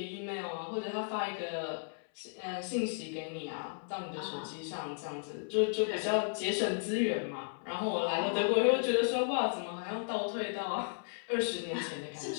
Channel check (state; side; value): silent; right; 55 dB below the other